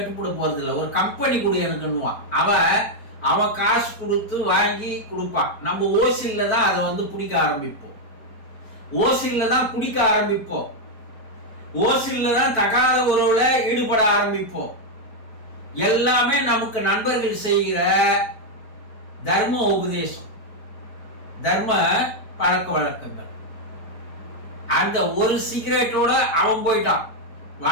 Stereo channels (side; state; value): right; late; 4.5 ms